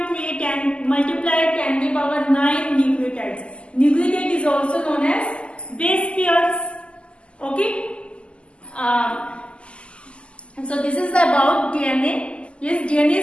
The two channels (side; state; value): right; late; 0.053 ms